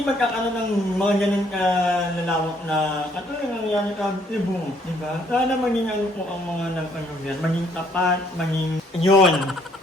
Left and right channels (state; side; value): normal; both; correlation 0.66